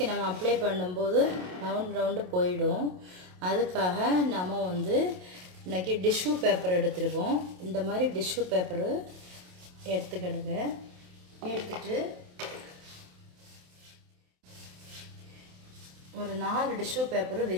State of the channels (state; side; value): late; left; 27 ms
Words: நம்ம அப்ளை பண்ணும்போது ரவுண்டு போயிடும். அதுக்காக நம்ம வந்து இன்றைக்கி டிஷ்யூ பேப்பர் எடுத்துருக்கோம். இந்த மாதிரி டிஷ்யூ பேப்பரு எடுத்துக்கிடுங்க. எடுத்துட்டு ஒரு 4 டிஷ்யூ பேப்பரை